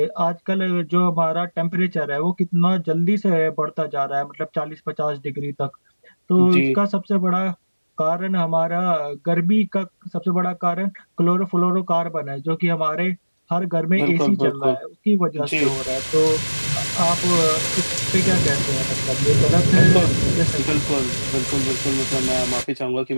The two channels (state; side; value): inverted; both; correlation -1.00